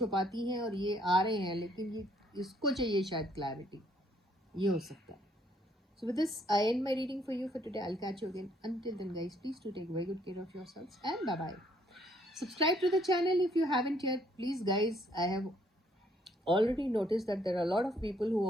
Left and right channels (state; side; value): normal; both; correlation 0.66